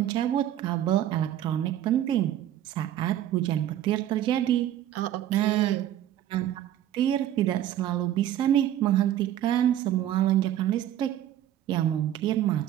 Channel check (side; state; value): left; quieter; 11.9 dB